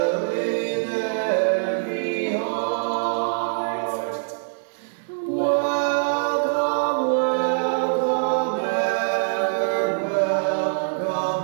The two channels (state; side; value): silent; left; digital silence